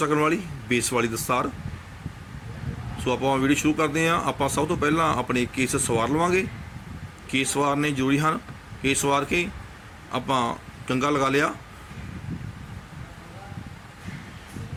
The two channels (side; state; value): both; identical; correlation 1.00